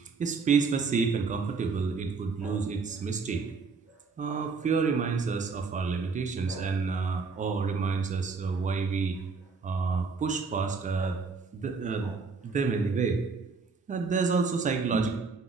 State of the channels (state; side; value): quieter; left; 4.7 dB